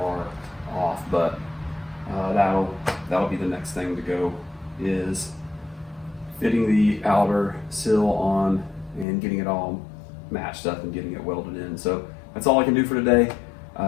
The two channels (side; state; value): right; drops out; at 9.1 s